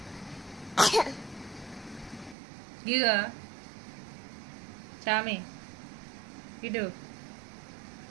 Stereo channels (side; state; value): left; drops out; at 2.4 s